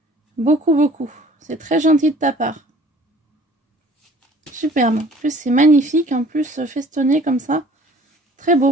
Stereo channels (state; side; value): normal; both; correlation 0.52